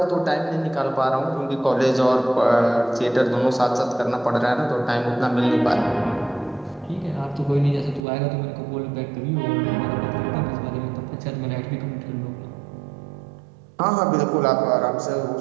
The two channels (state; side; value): drops out; left; at 8.0 s